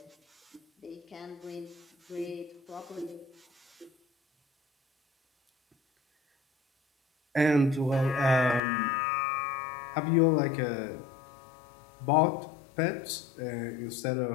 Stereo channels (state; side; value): drops out; right; at 8.6 s